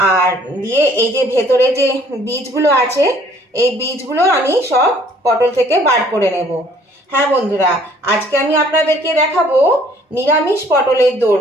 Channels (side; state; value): both; normal; correlation 0.58